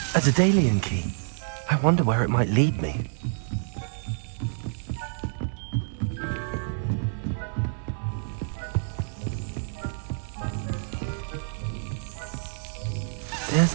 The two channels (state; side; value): silent; left; digital silence